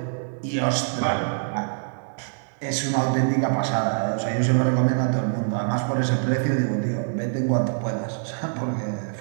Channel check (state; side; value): silent; left; digital silence